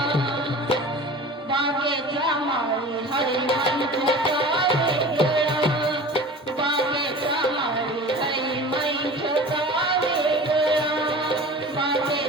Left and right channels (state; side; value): normal; both; correlation 0.38